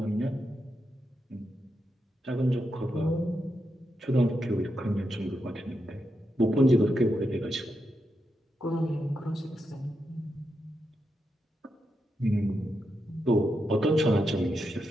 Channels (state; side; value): normal; both; correlation 0.85